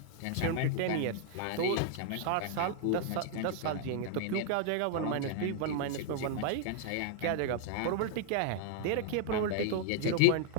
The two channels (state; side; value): different; both; correlation 0.00